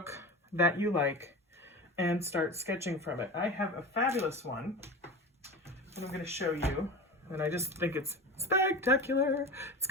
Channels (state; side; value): normal; both; correlation 0.29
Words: that you like and start sketching from it. I have a fabulous one that I'm going to show you, and I just think it's spectacular. It's